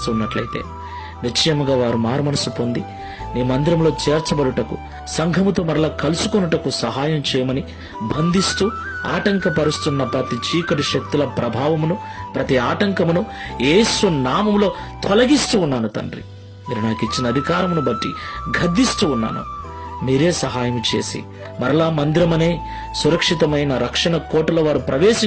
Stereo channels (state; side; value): identical; both; correlation 1.00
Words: నిశ్చయముగా వారు మారుమనసు పొంది నీ మందిరంలో చేర్చబడుటకు, సంఘముతో మరలా కలుసుకొనుటకు సహాయం చేయమని బంధిస్తూ ఆటంకపరుస్తున్న ప్రతి చీకటి శక్తుల ప్రభావమును, ప్రతి ఆటంకమును యేసు నామములో తొలగిస్తూ ఉన్నాను తండ్రి. మీరు నాకు ఇచ్చిన అధికారమును బట్టి గద్దిస్తూ ఉన్నాను. మీరే సహాయం చేసి మరలా మందిరమనే సురక్షితమైన రక్షణ కోటలో వారు